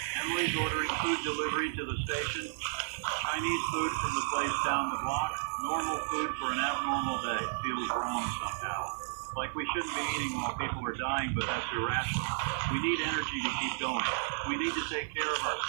Emily's ordering food delivery to the station. Chinese food from the place down the block. Normal food for an abnormal day. Feels wrong somehow. Like we shouldn't be eating while people are dying, but that's irrational. We need energy to keep going. We need to take care of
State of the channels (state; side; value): silent; left; 56 dB below the other